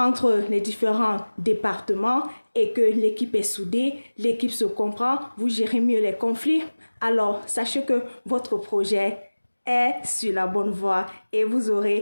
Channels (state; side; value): inverted; both; correlation -1.00